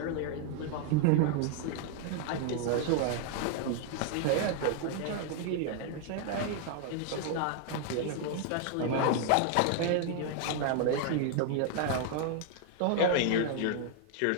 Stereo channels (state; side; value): different; both; correlation 0.00